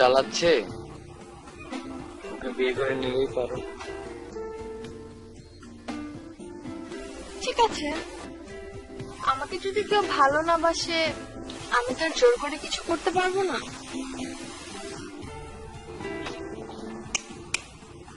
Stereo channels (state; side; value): identical; both; correlation 1.00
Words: ওকে বিয়ে করে নিলেই পারো। ঠিক আছে, আমাকে যদি কেউ ভালো না বাসে আমি তো আর জোর করে কিছু করতে পারবো না।